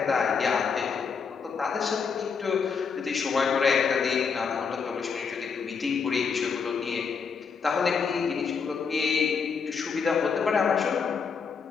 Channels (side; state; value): right; quieter; 5.8 dB